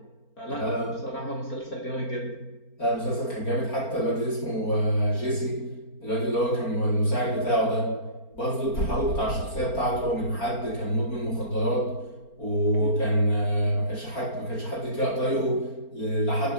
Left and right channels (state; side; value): late; right; 4.4 ms